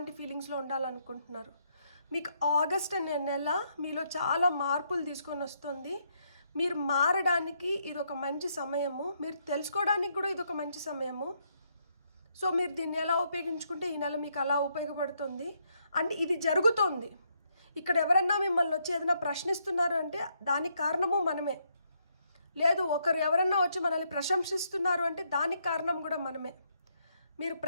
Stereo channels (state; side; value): inverted; both; correlation -0.75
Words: ఫీలింగ్స్లో ఉండాలనుకుంటున్నారు. మీకు ఆగస్ట్ అనే నెల మీలో చాలా మార్పులు తీసుకొని వస్తుంది. మీరు మారడానికి ఇది ఒక మంచి సమయము, మీరు తెలుసుకోవడానికి కూడా ఇది ఒక మంచి సమయము. సో మీరు దీన్ని ఎలా ఉపయోగించుకుంటే ఈ నెల మీకు అలా ఉపయోగపడుతుంది. అండ్ ఇది జరుగుతోంది. ఇక్కడ ఎవరన్నా మిమ్మల్ని వచ్చి ఏదైనా ప్రశ్నిస్తున్నారు అంటే దానికి కారణము మనమే. లేదు ఒకరు ఎవరన్నా వచ్చి మనల్ని ప్రశంసిస్తున్నారు అంటే దానికి కారణం కూడా మనమే. మీరు